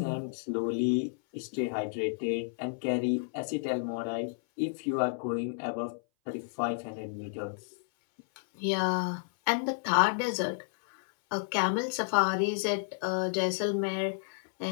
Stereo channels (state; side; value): silent; right; 57 dB below the other